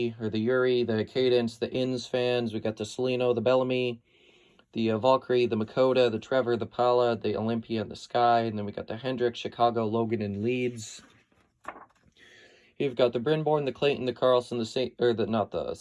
the Cadence, the Inns fans. We got the Salino, the Bellamy, the Valkyrie, the Makota, the Trevor, the Paula, the Olympia, and the Sky. And then we got the Hendrick, Chicago, Logan, and Leeds. You've got the Brynborn, the Clayton, the Carlson, the Saint, or not the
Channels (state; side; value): identical; both; correlation 1.00